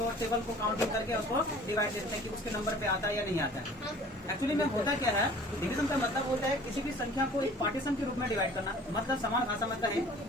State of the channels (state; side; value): normal; both; correlation 0.48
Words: टेबल को काउंटिंग करके उसको डिवाइड देते हैं कि उसके नंबर पे आता है या नहीं आता है। एक्चुअली में होता क्या है, डिवीजन का मतलब होता है किसी भी संख्या को एक पार्टीशन के रूप में डिवाइड करना। मतलब समान भाषा में कहें